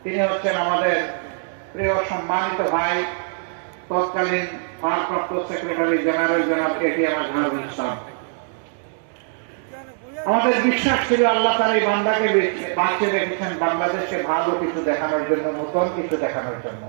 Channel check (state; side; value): silent; left; 64 dB below the other